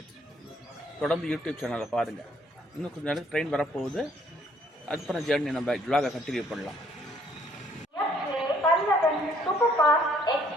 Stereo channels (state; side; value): normal; both; correlation 0.64